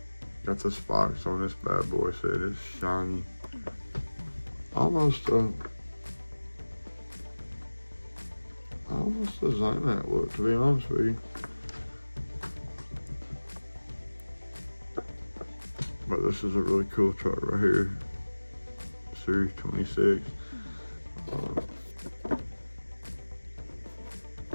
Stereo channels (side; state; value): both; inverted; correlation -1.00